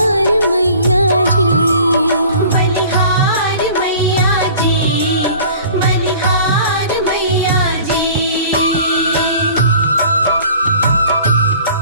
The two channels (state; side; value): inverted; both; correlation -0.47